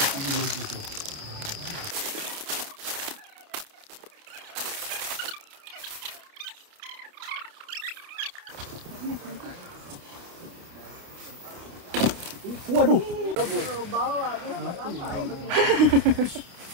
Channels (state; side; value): late; left; 29 ms